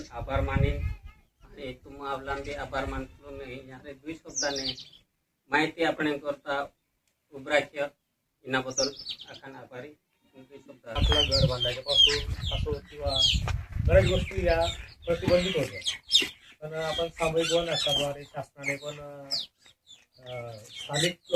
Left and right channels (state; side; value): identical; both; correlation 1.00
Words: आभार माने आणि तुम आवला बी आभार मानतो मी यारे 2 शब्दाने माहिती आपण करता उभराख्य इनाबद्दल आखान आभारी। आपलं घर बांधायच्यापासून असो किंवा बऱ्याच गोष्टी या प्रतिबंधित होत्या, पण आपण सामूहिक वन हक्काद्वारे शासनाने पण स्थानिक